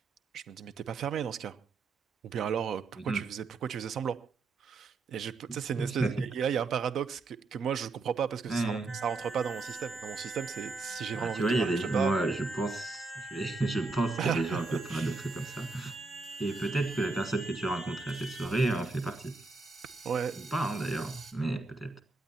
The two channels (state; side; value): quieter; left; 3.8 dB